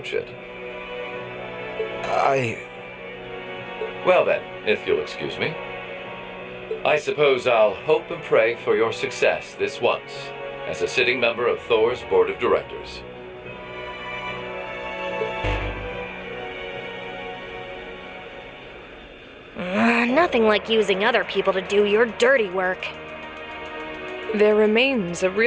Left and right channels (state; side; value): identical; both; correlation 1.00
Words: it. Well then, if you'll excuse me. I suppose I'll hope and pray for your success this once, as a sitting member of Thor's Board of Directors. Nothing like using other people to do your dirty work. There remains a